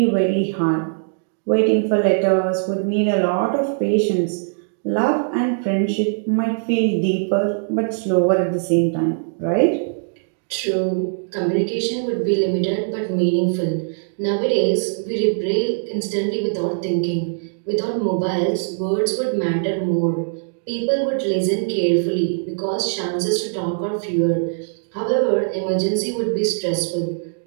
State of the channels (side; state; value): left; silent; digital silence